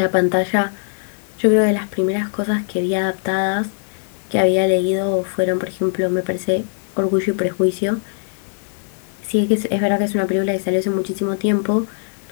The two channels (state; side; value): silent; right; digital silence